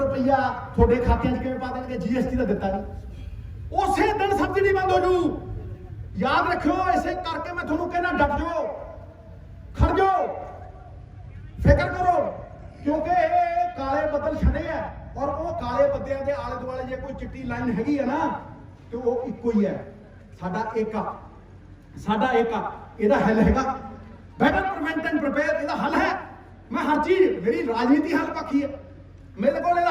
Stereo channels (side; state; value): both; identical; correlation 1.00